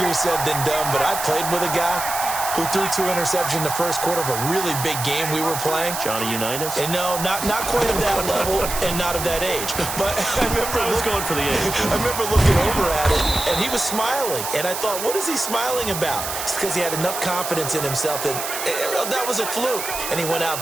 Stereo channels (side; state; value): right; noise; hiss, 5 dB below the sound